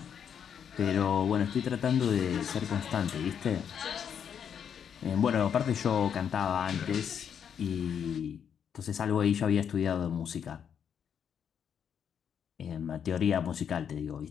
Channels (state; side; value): quieter; right; 8.0 dB